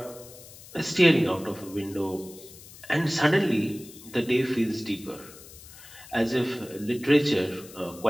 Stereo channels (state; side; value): noise; left; hiss, 18 dB below the sound